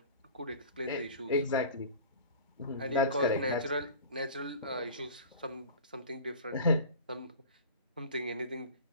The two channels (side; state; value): both; inverted; correlation -0.38